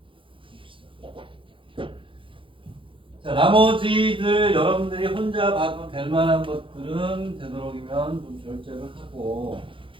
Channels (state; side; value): late; left; 0.25 ms